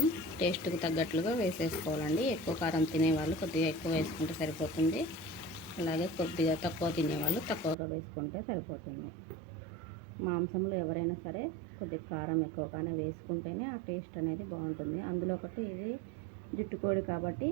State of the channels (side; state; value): left; drops out; at 7.8 s